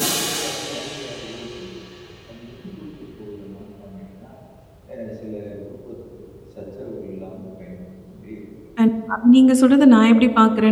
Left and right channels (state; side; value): identical; both; correlation 1.00